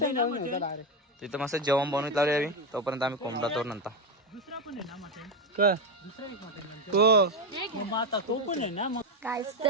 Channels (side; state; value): both; normal; correlation 0.10